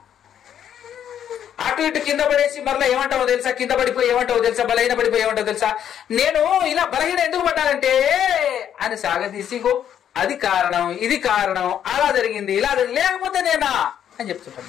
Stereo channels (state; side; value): quieter; right; 9.6 dB